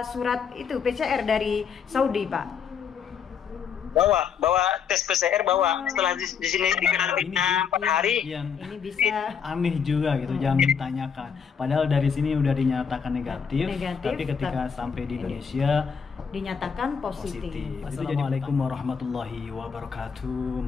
surat itu PCR dari Saudi, Pak? Bawa tes PCR bawa. Setelah di sini dikarantina 4 hari. Yang Ini bisa aneh juga gitu, jangan ditanyakan. Padahal dari sini udah dinyatakan negatif, tapi ketika sampai di Indonesia dinyatakan positif. Assalamualaikum warahmatullahi wabarakatuh.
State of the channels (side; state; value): right; quieter; 6.8 dB